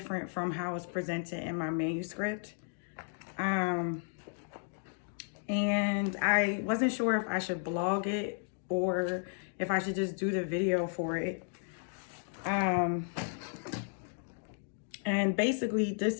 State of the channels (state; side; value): silent; right; 55 dB below the other